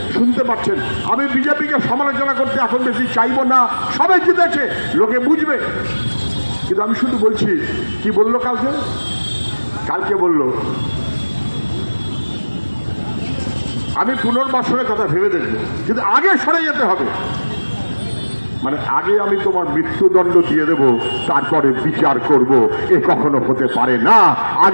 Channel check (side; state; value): both; inverted; correlation -1.00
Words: শুনতে পাচ্ছেন। আমি বিজেপিকে সমালোচনা করতে এখন বেশি চাইবো না, সবাই জিতেছে, লোকে বুঝবে। কিন্তু আমি শুধু বলছি, কি বললো কালকে বললো আমি পুনর্বাসনের কথা ভেবে দেখবো, কিন্তু আগে সরে যেতে হবে। মানে আগে আমি তোমার মৃত্যুদণ্ড দিয়ে দেব, তারপরে বিচার করব। এ কখনো হতে পারে না।